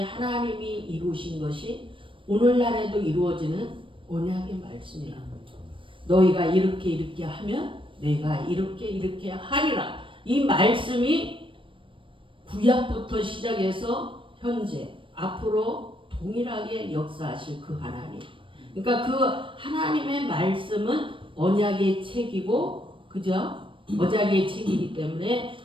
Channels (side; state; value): left; late; 0.25 ms